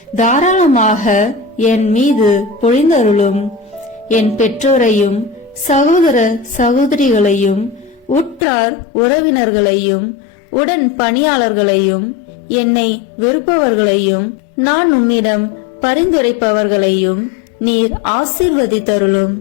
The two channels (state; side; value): drops out; right; at 8.5 s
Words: தாராளமாக என் மீது பொழிந்தருளும். என் பெற்றோரையும் சகோதர சகோதரிகளையும் உற்றார் உறவினர்களையும் உடன் பணியாளர்களையும் என்னை வெறுப்பவர்களையும் நான் உம்மிடம் பரிந்துரைப்பவர்களையும் நீர் ஆசீர்வதித்தருளும்.